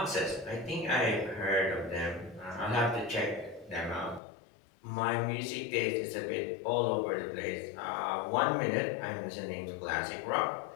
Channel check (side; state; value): right; drops out; at 4.2 s